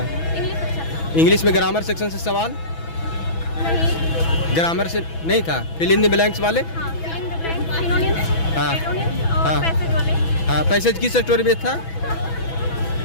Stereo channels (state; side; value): late; right; 6.1 ms